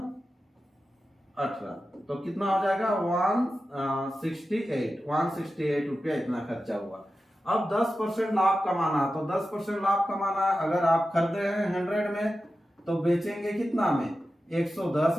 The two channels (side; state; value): both; normal; correlation 0.92